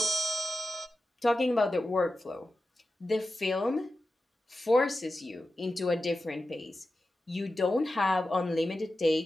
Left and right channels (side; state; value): both; normal; correlation 0.93